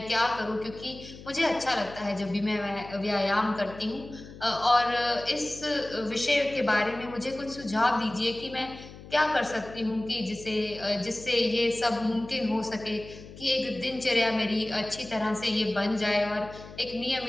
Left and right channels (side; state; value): left; noise; hum, 16 dB below the sound